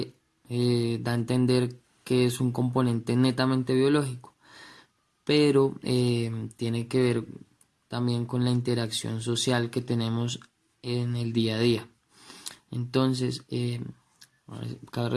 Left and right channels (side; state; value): both; identical; correlation 1.00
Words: da a entender que es un componente netamente biológico, pero tiene que ver también con la interacción social que tenemos en el día a día. Entonces, cabe